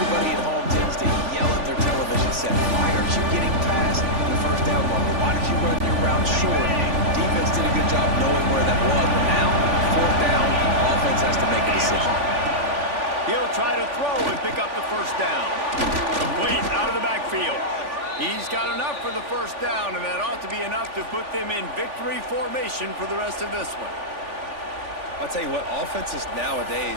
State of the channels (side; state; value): left; late; 3.5 ms